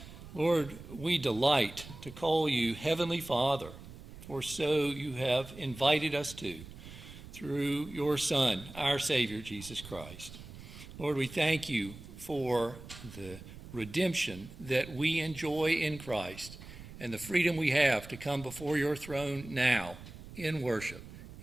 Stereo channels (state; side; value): noise; right; rumble, 15 dB below the sound